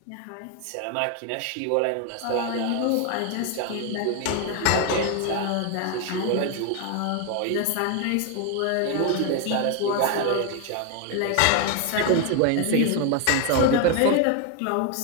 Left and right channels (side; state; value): both; different; correlation 0.01